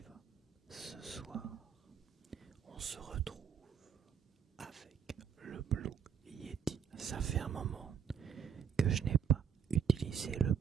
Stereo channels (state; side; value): quieter; left; 7.6 dB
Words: vas ce soir? On se retrouve avec le Blue Yeti. Ça fait un moment que je n'ai pas utilisé le